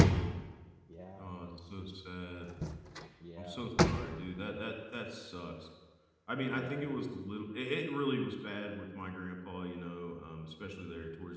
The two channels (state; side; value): identical; both; correlation 1.00